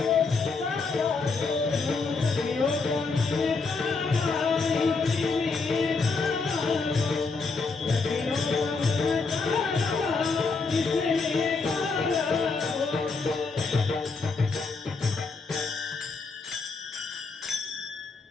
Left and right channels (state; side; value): quieter; right; 4.3 dB